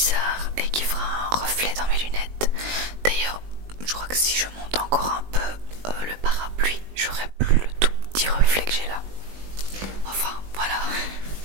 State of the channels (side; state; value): left; late; 20 ms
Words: et qui fera un reflet dans mes lunettes. D'ailleurs, je crois que si je monte encore un peu le parapluie, j'aurai plus le tout petit reflet que j'ai là. Enfin, voilà.